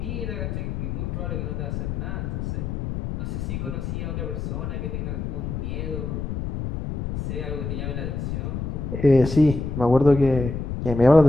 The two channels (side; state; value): left; noise; rumble, 4 dB below the sound